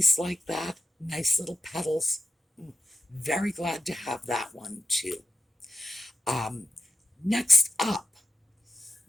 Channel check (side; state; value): both; normal; correlation 0.89